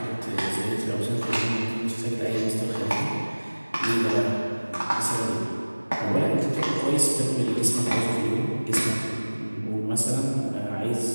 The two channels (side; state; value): both; inverted; correlation -1.00